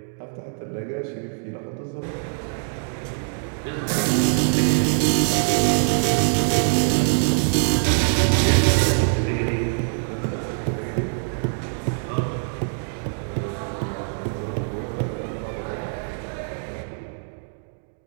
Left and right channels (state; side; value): silent; left; digital silence